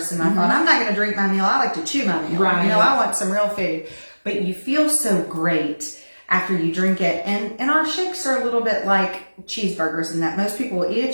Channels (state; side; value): inverted; both; correlation -1.00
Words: I thought, I'm not going to drink my meal. I like to chew my meal. Right. You know, I want some real food. But you feel so great after you drink it. And our shakes are a little bit like cheeseburgers in that most people will eat a